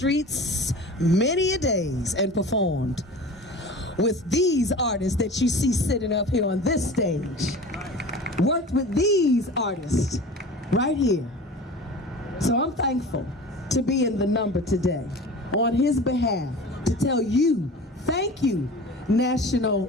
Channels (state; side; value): normal; both; correlation 0.37